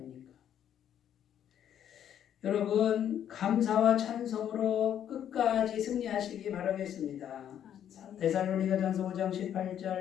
여러분 감사와 찬송으로 끝까지 승리하시기 바라겠습니다. 데살로니가전서 5장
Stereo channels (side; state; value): right; quieter; 9.9 dB